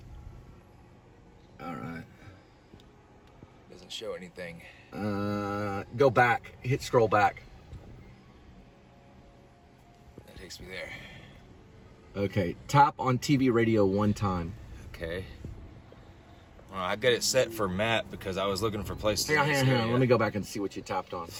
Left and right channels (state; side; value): identical; both; correlation 1.00